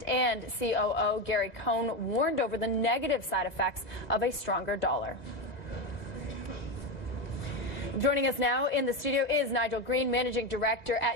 and COO Gary Cohn warned over the negative side effects of a stronger dollar. Joining us now in the studio is Nigel Green, Managing Director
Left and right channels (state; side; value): late; right; 2.0 ms